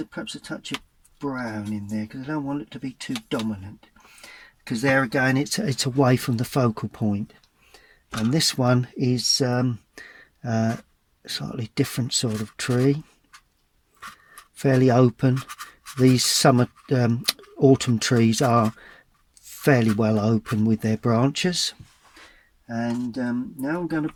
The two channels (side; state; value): both; identical; correlation 1.00